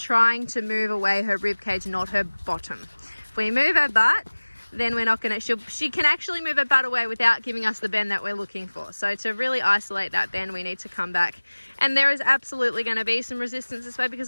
to move away her rib cage, not her bottom. If we move her butt, then we're not going to, she can actually move her butt away without giving us the bend that we're looking for. So to really isolate that bend, we need to come back. And there is absolutely going to be some resistance this way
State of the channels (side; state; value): both; inverted; correlation -1.00